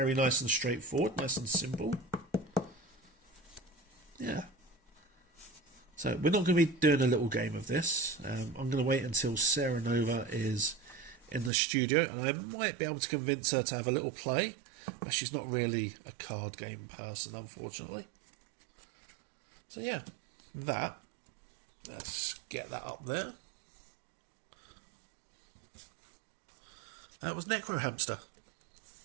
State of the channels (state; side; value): drops out; left; at 11.5 s